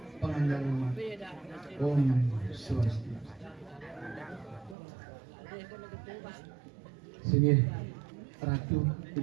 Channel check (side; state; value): left; drops out; at 4.8 s